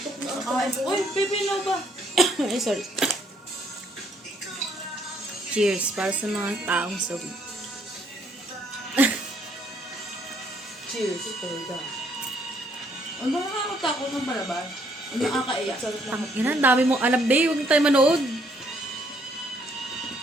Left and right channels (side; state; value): both; normal; correlation 0.68